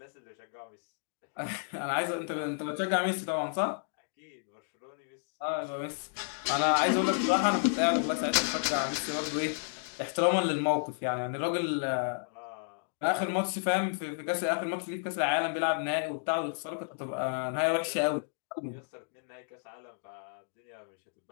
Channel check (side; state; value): right; silent; digital silence